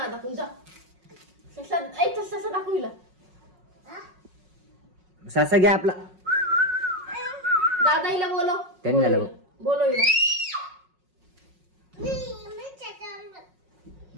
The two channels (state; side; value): late; left; 5.5 ms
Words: पण जा. ससा दाखविला. ससा घे आपला. दादा हिला बोलव. त्यांनी झालं बघ. बोलव हिला.